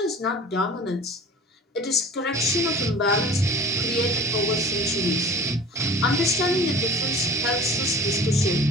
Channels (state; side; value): normal; both; correlation 0.42